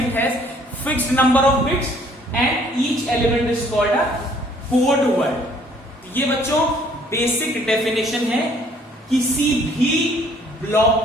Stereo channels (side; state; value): both; normal; correlation 0.60